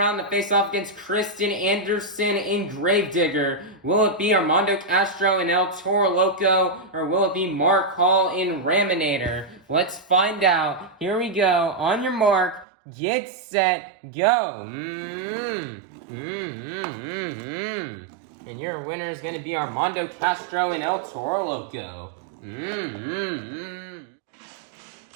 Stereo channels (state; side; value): drops out; left; at 12.7 s